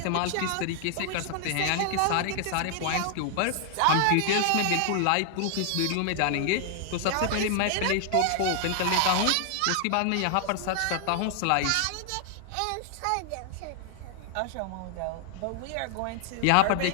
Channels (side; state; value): both; different; correlation 0.00